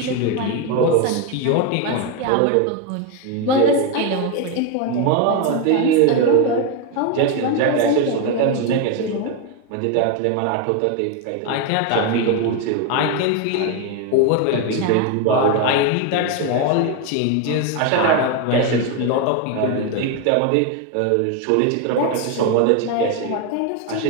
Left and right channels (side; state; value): both; different; correlation 0.02